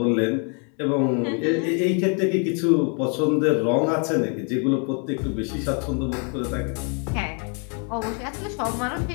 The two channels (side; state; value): right; quieter; 38.8 dB